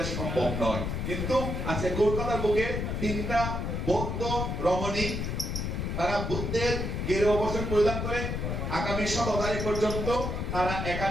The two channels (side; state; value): left; noise; rumble, 2 dB below the sound